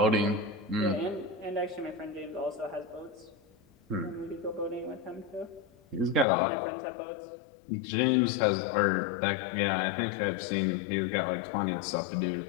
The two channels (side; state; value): right; drops out; at 6.2 s